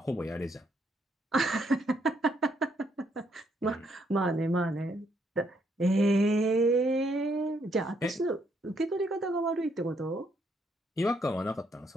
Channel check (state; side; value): normal; both; correlation 0.73